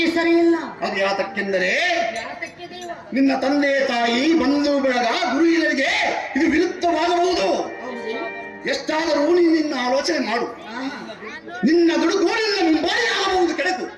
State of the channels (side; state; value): both; identical; correlation 1.00